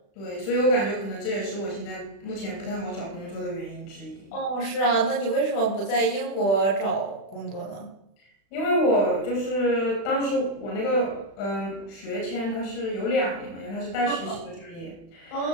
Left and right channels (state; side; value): late; right; 36 ms